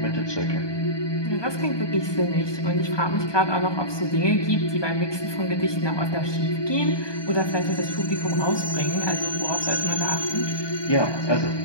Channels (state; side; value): late; right; 1.2 ms